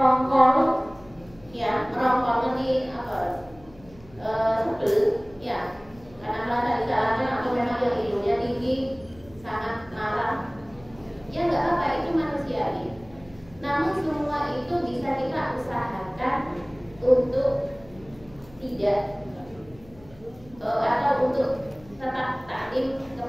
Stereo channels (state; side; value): noise; left; hum, 24 dB below the sound